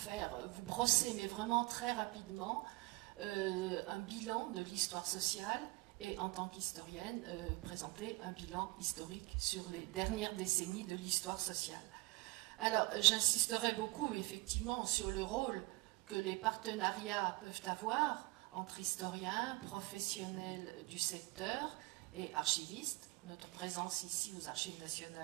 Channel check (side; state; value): left; quieter; 23.7 dB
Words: brosser, mais vraiment très rapidement, un bilan de l'histoire sociale et en tant qu'historienne, présenter un bilan historique sur les dernières décennies de l'histoire sociale. Alors, j'insisterai beaucoup effectivement sur le rôle que les partenariats peuvent avoir entre historiens, professionnels du secteur et archivistes. Notre présence ici aux Archives